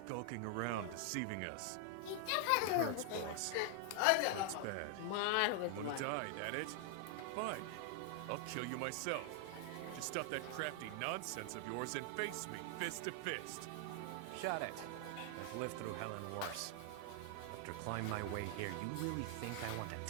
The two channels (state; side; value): different; both; correlation 0.00